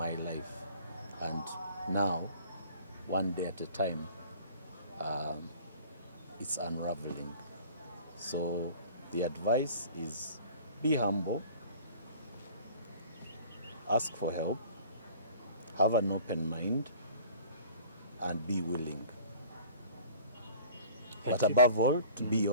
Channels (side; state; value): both; inverted; correlation -0.47